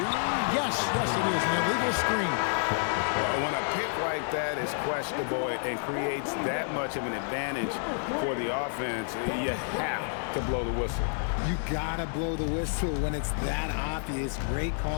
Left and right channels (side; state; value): right; silent; digital silence